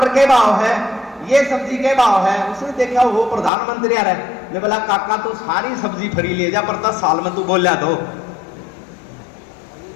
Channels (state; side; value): drops out; right; at 3.5 s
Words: के भाव है, ये सब्जी के भाव है। उसने देखा वो प्रधानमंत्री आ रहा है, मैं बोला काका तू सारी सब्जी फ्री ले जा पर 10 साल में तू बोलिया तो।